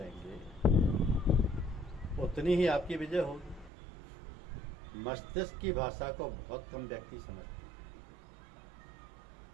उतनी ही आपकी विजय होगी। मस्तिष्क की भाषा को बहुत कम व्यक्ति समझते हैं,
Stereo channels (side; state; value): left; drops out; at 3.7 s